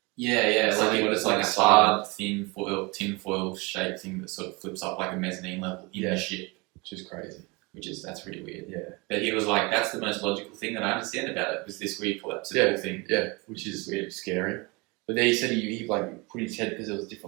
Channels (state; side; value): quieter; left; 26.4 dB